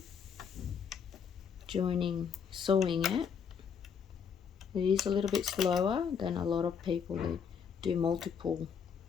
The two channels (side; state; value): right; quieter; 6.9 dB